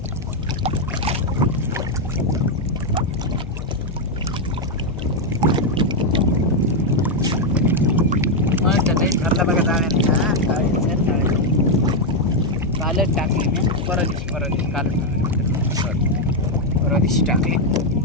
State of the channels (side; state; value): both; normal; correlation 0.02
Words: घरला बघा जाळ्या कालच टाकली मी. परत दिवशी टाकली.